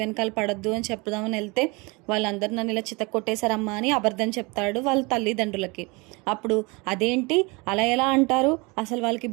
పడద్దు అని చెప్దామని వెళ్తే వాళ్ళందరూ నన్ను ఇలా చితక్కొట్టేశారమ్మా అని అబద్ధం చెప్తాడు వాళ్ళ తల్లిదండ్రులకి. అప్పుడు అదేంటి అలా ఎలా అంటారు, అసలు వాళ్ళకి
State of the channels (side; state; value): left; quieter; 27.0 dB